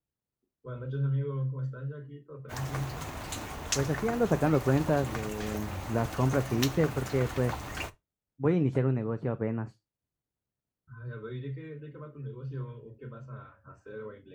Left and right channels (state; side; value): identical; both; correlation 1.00